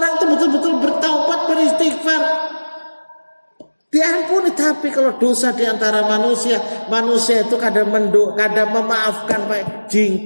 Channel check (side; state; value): both; inverted; correlation -1.00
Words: itu betul-betul bertaubat, beristighfar, diampuni. Tapi kalau dosa di antara manusia itu kadang memaafkan Pak,